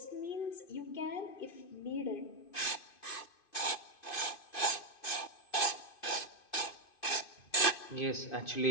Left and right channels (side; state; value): right; late; 2.5 ms